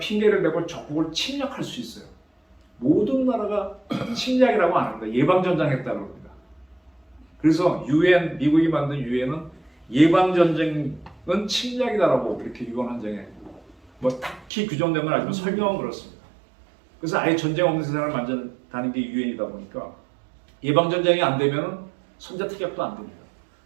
대고 적국을 침략할 수 있어요. 모든 나라가 침략이라고 안 합니다. 예방전쟁했다고 합니다. 그래서 UN, 미국이 만든 UN은 예방전쟁은 침략이다라고 이렇게 유언한정에 뭐 딱히 규정된 건 아니지만 설명은 그렇습니다. 그래서 아예 전쟁 없는 세상을 만든다는 게 UN이다 보니까 예방전쟁이 안 되면 선제 타격도 안 됩니다.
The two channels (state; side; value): drops out; left; at 14.5 s